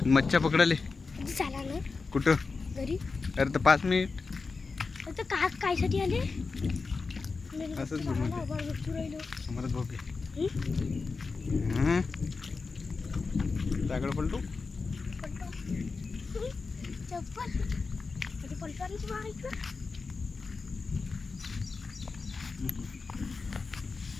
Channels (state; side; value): quieter; right; 4.3 dB